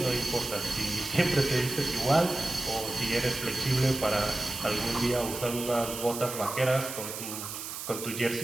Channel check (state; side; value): noise; right; hiss, 8 dB below the sound